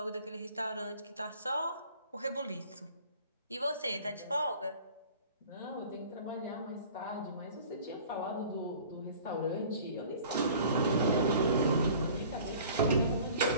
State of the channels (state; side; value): inverted; both; correlation -0.48